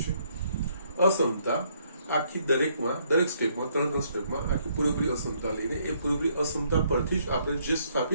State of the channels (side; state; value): both; inverted; correlation -0.69